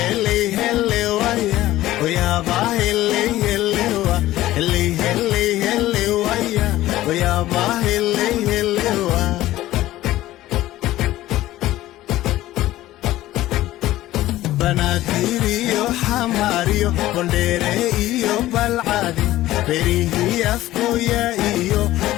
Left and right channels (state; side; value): quieter; right; 15.5 dB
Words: hele waya, oya ba hele hele wa. Hele hele hele waya, oya ba hele hele wa. Banaadir iyo xamaar iyo Boondheere iyo Balcad berihi afkooya iyo